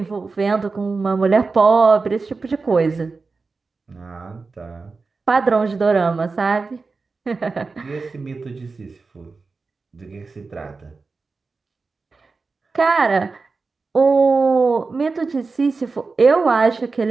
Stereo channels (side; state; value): left; quieter; 4.2 dB